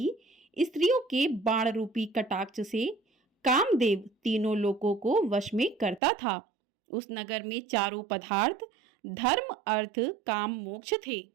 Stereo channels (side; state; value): left; drops out; at 6.0 s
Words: स्त्रियों के बाण रूपी कटाक्ष से कामदेव तीनों लोकों को वश में करता था। उस नगर में चारों पदार्थ धर्म, अर्थ, काम, मोक्ष थे।